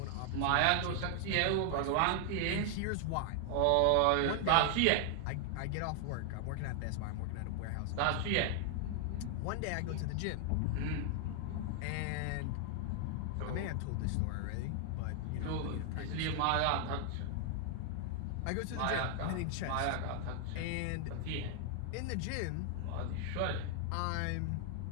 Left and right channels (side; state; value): both; different; correlation 0.00